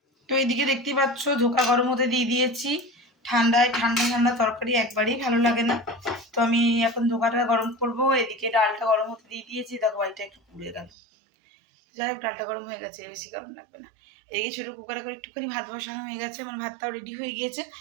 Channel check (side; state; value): left; drops out; at 10.9 s